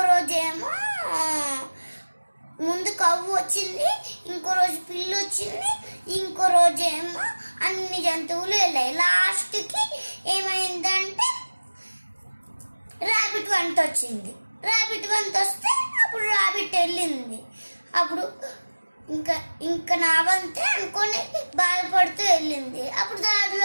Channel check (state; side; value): inverted; both; correlation -1.00